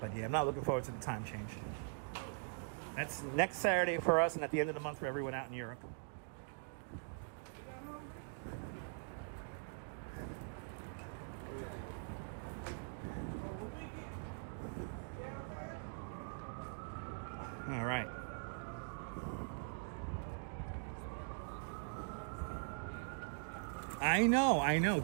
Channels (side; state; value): left; silent; digital silence